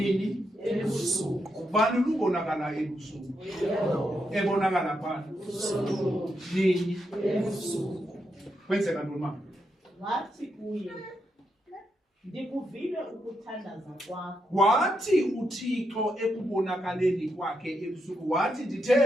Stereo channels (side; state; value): both; normal; correlation 0.82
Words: Ubani lubonakala ebusuku? Ebonakala bani? Nini? Kwenzeka ntoni mama? wathi kuye ndikuvile ukuthandaza kwakho. Wathi uThixo ekubonakaleni kwakhe ebusuku wathi